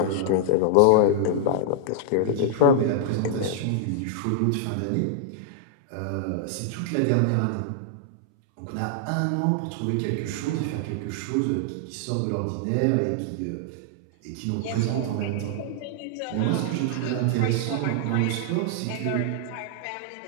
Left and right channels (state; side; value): different; both; correlation -0.01